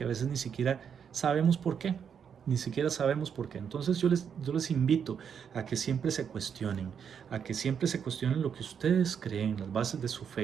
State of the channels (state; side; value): quieter; left; 7.5 dB